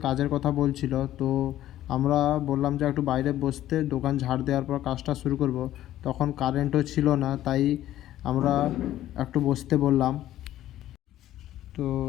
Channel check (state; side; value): quieter; right; 13.3 dB